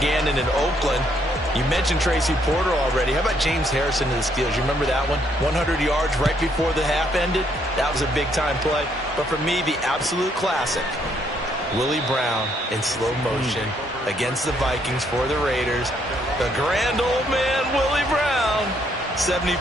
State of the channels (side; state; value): both; normal; correlation 0.71